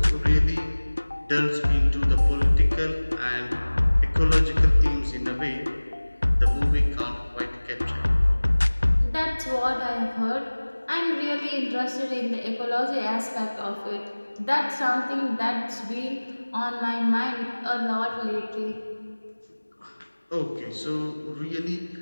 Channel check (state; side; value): inverted; both; correlation -1.00